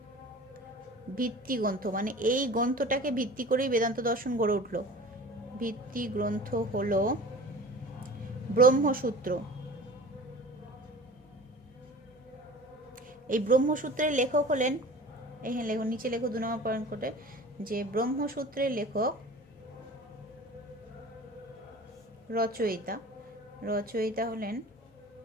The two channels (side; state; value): left; noise; hum, 30 dB below the sound